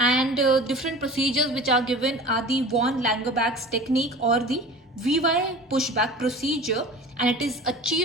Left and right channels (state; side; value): normal; both; correlation 0.38